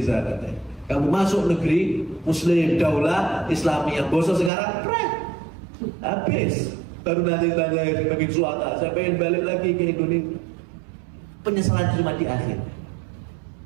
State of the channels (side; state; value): left; drops out; at 4.5 s